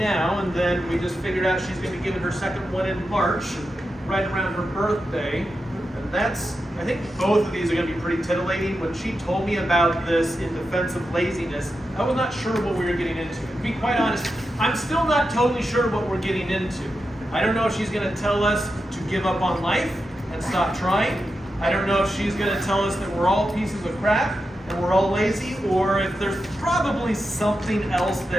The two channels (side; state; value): both; normal; correlation 0.89